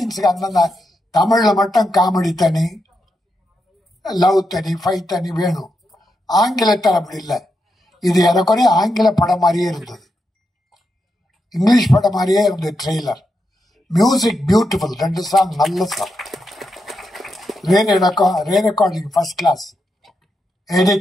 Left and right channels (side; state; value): both; normal; correlation 0.85